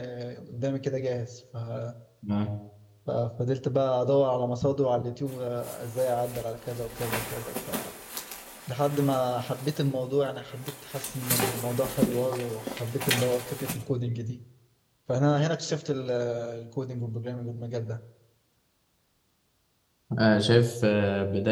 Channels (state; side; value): identical; both; correlation 1.00